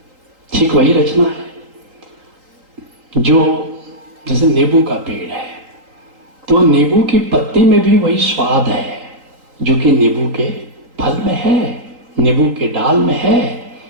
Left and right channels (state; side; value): late; left; 3.8 ms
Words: ठीक वही रचना है। जो जैसे नींबू का पेड़ है तो नींबू की पत्ती में भी वही स्वाद है जो कि नींबू के फल में है, नींबू के डाल में है।